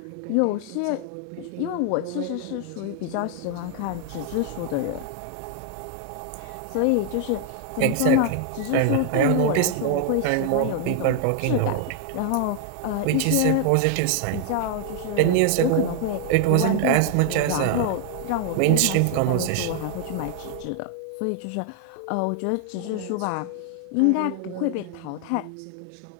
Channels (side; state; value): both; different; correlation 0.00